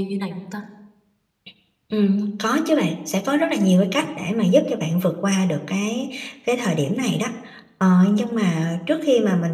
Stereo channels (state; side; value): identical; both; correlation 1.00